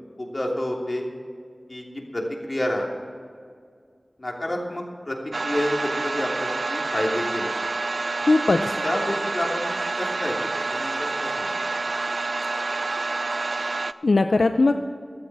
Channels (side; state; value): both; normal; correlation 0.96